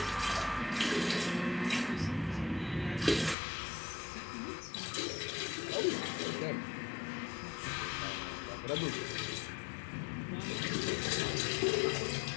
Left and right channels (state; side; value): drops out; right; at 3.4 s